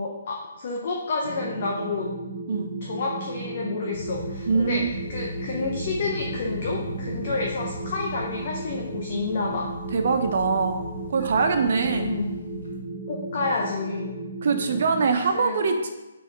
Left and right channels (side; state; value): both; inverted; correlation -0.67